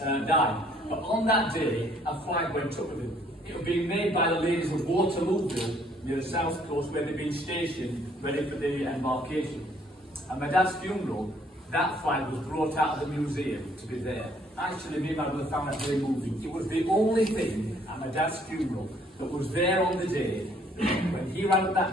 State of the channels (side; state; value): both; normal; correlation 0.63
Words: had died. But on that day, a flag went up with him. It was being made by the ladies of Waterlooville, near the south coast, where they'd been stationed, ready for the embarkation. At my dad's funeral, that flag was brought out of the museum to be there. Actually, me and my brother found that very moving. It was the only thing at my dad's funeral that was there on the day when he ran up